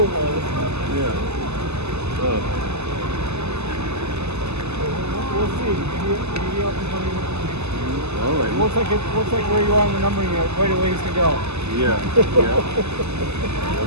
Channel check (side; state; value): left; late; 0.80 ms